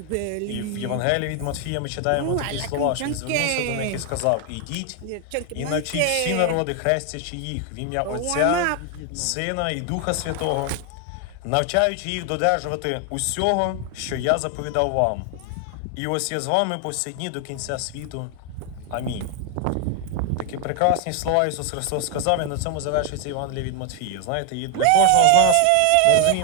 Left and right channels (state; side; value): different; both; correlation 0.00